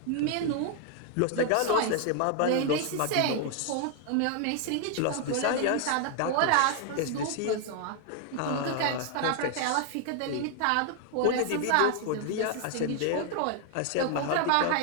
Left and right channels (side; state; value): both; different; correlation 0.00